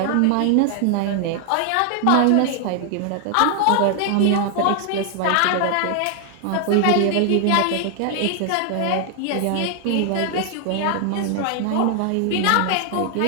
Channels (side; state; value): both; different; correlation 0.00